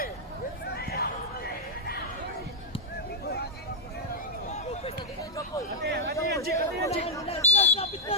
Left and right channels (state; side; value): normal; both; correlation -0.03